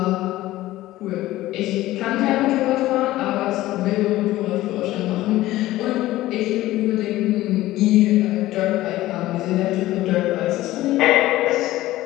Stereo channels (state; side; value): quieter; right; 16.2 dB